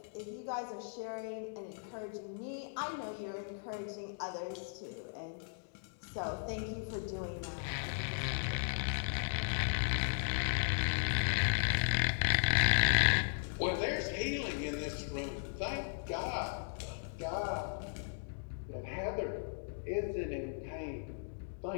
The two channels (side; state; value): right; silent; digital silence